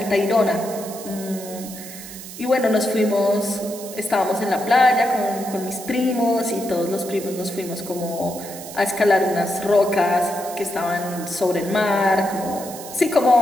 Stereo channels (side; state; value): right; noise; hiss, 13 dB below the sound